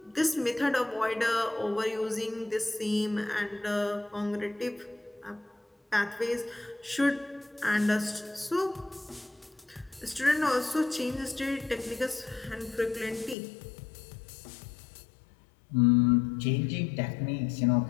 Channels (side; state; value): right; drops out; at 13.4 s